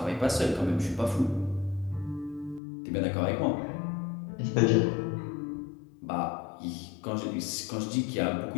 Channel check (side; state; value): right; drops out; at 2.6 s